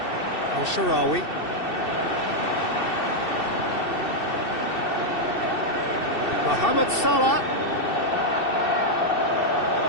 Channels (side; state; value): right; late; 2.7 ms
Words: Al-Sharawi. Mohamed Salah.